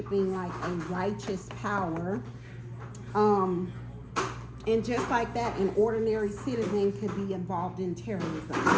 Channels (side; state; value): both; identical; correlation 1.00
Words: like a righteous power. And just like that, an ordinary citizen could be involved in terrorism,